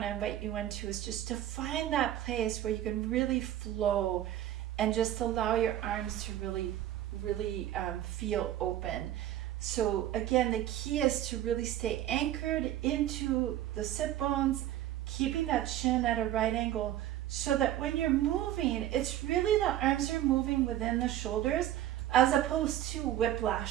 to invite you into is just to find that place where you can really flow and just allow your arms to really feel open. So again, the key is to really stay anchored into the sit bones, keeping that chin at a right angle so that when you're moving, it's really the arms are moving within the shoulders as opposed to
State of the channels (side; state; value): left; quieter; 12.7 dB